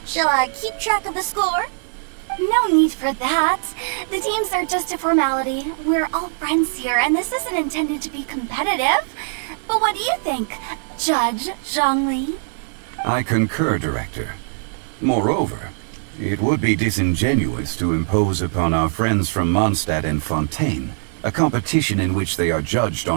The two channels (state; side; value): silent; left; 59 dB below the other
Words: Shall I keep track of the score? No need for that. The teams are just a formality. We're all friends here, and this isn't intended to be competitive. But what do you think, Judge Zhongli? I concur, Director. Moreover, it would be disingenuous to impose upon our friends from Mondstadt and Fontaine a competition in which they are judged